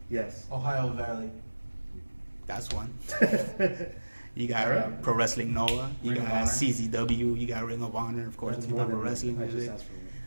Yes. Ohio Valley. That's one. You got Alright. Pro Wrestling Noah. You Ring of got Honor. CZW. You got Ring of Honor, of course. That's You more know, than pro wrestling one. I just music. asked for one.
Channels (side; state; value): both; inverted; correlation -1.00